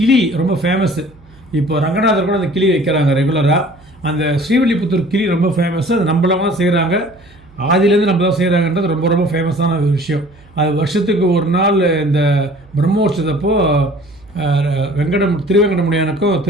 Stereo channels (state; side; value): noise; right; hum, 26 dB below the sound